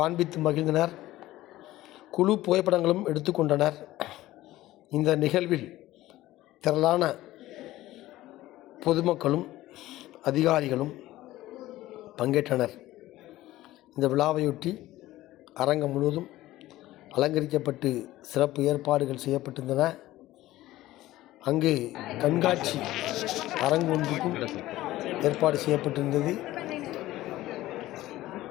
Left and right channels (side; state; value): right; quieter; 16.1 dB